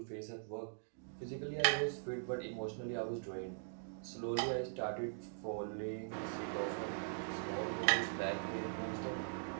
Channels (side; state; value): left; silent; digital silence